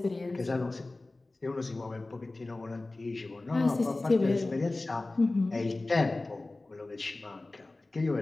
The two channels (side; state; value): right; quieter; 3.0 dB